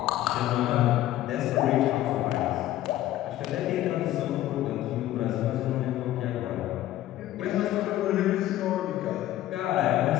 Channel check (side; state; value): right; quieter; 14.0 dB